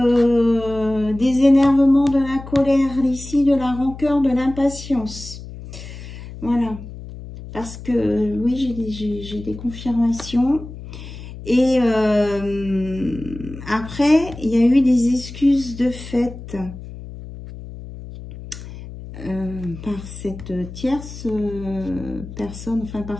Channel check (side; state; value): left; noise; hum, 13 dB below the sound